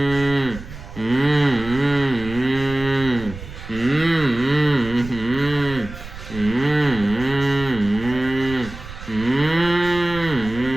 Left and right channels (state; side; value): noise; right; rumble, 13 dB below the sound